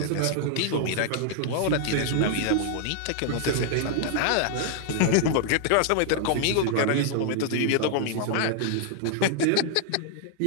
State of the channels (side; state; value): both; different; correlation 0.00